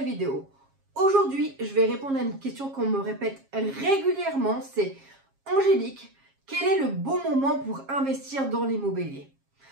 vidéo. Aujourd'hui, je vais répondre à une question qu'on me répète régulièrement, c'est Angélique, quel est le bon moment pour investir dans l'immobilier?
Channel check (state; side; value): late; left; 7.4 ms